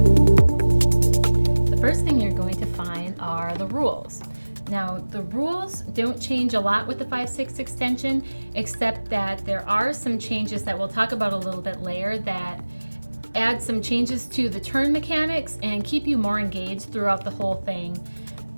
The first thing you're going to find are the rules. Now, the rules don't change a lot with the 5/6 extension, except that there are some changes that we'll talk about a little bit later that add some changes to the turn mechanics and keep you more engaged throughout the whole thing.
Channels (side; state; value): both; inverted; correlation -1.00